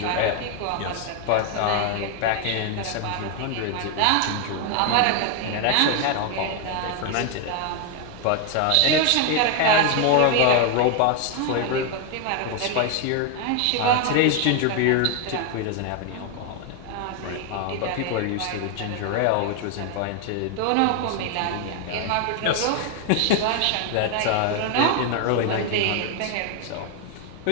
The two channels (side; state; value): both; different; correlation 0.00